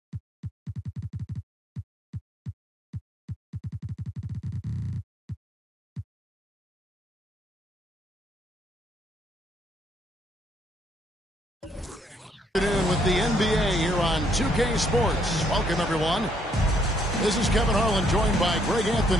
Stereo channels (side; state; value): both; normal; correlation 0.70